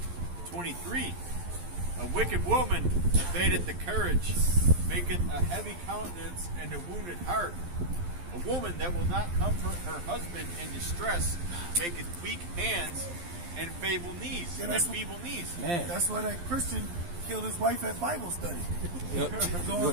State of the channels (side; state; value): left; late; 12 ms